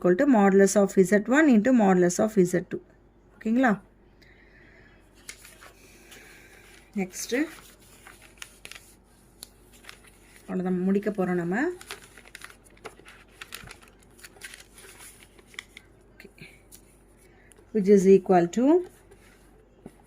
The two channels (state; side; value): identical; both; correlation 1.00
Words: to modulus of z1 into modulus of z2 ஓகேங்களா நெக்ஸ்ட்டு அவ்வளோதான் முடிக்க போகிறோம் நம்ம okay which is equal to